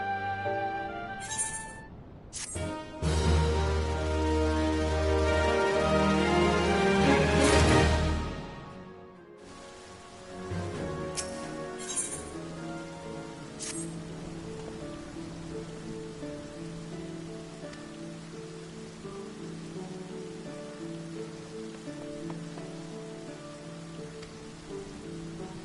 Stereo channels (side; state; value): both; identical; correlation 1.00